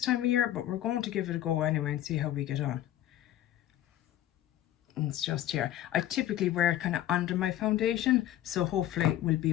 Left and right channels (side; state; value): right; quieter; 12.9 dB